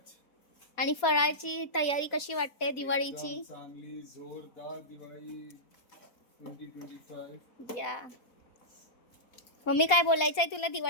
आणि फराळची तयारी कशी वाटते दिवाळीची. चांगली जोरदार दिवाळी 2025. या मम्मी, काय बोलायचं आहे तुला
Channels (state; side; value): late; right; 4.2 ms